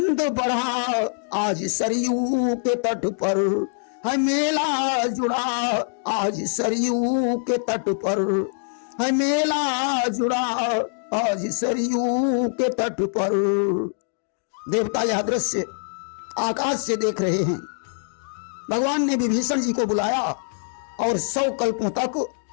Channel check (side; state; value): right; silent; digital silence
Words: बढ़ा, आज सरयू के तट पर है मेला जुड़ा, आज सरयू के तट पर है मेला जुड़ा, आज सरयू के तट पर। देवता यह दृश्य आकाश से देख रहे हैं। भगवान ने विभीषण जी को बुलाया और 100 कल्पों तक